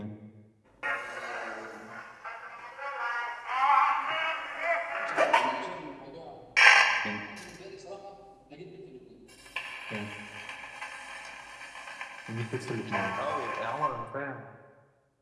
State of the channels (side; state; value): both; identical; correlation 1.00